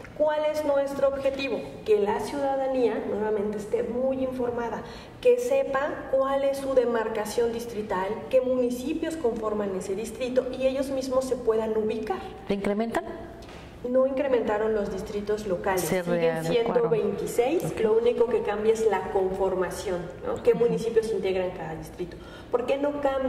¿Cuál es nuestro objetivo? Que la ciudadanía nuevamente esté muy informada, que sepa cuál es su demarcación distrital, qué municipios conforman ese distrito y ellos mismos se puedan ubicar. ¿Le incrementan? No incrementaron los distritos locales, siguen siendo 26, okay. Lo único que cambia es la conformación, ¿no? ¿Qué municipios integran cada distrito? ¿Por qué no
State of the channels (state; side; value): identical; both; correlation 1.00